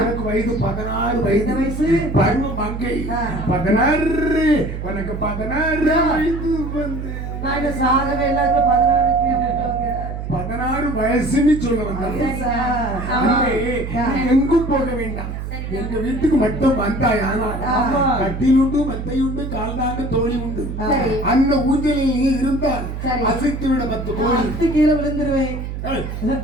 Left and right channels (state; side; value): noise; right; hum, 6 dB below the sound